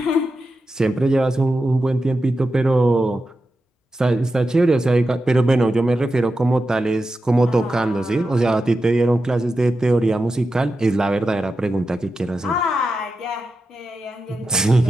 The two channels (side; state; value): both; normal; correlation 0.90